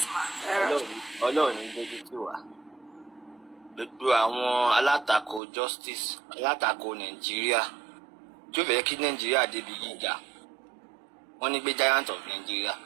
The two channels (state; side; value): drops out; left; at 5.4 s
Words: ma. Ọlọ́run ní dojú tì wá. Gbogbo àwọn alátakò justice, alátakò Nàìjíríà. Tí ó fẹ́ kí Nàìjíríà débi gíga. Wọ́n ní gbé giant of Nigeria,